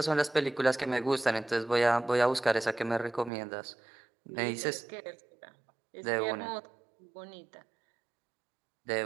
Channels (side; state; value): left; drops out; at 3.3 s